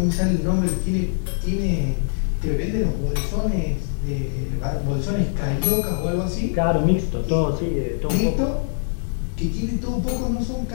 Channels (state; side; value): silent; right; 60 dB below the other